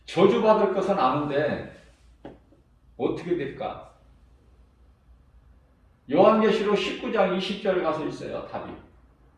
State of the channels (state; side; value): identical; both; correlation 1.00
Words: 저주받을 것은 아는데 어떻게 될까? 요한계시록 19장 20절 가서 있어요. 답이.